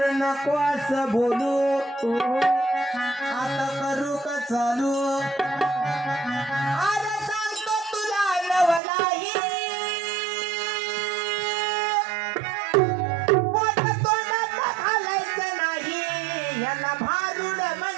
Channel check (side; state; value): left; drops out; at 8.8 s